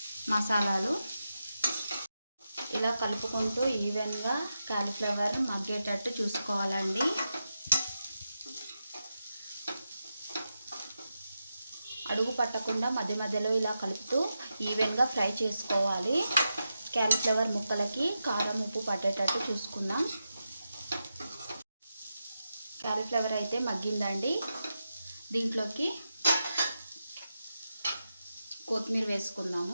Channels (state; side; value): inverted; both; correlation -0.89